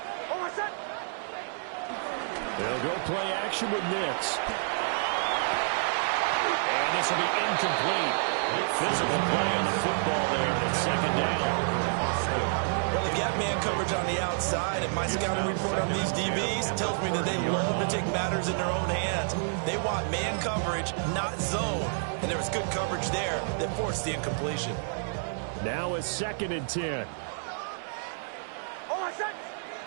They'll go play action with Nix. And this will be incomplete. Physical play on the football there at 2nd down. Well, they've got man coverage on the outside, and my scouting report on these DBs tells me that they love to take matters in their own hands. They want man coverage, not zone. And there was good coverage there that forced the incompletion. Now a 2nd and 10.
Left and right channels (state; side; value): silent; left; 58 dB below the other